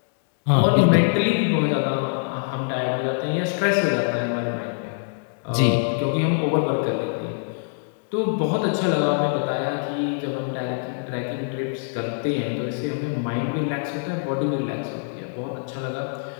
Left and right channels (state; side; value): silent; right; digital silence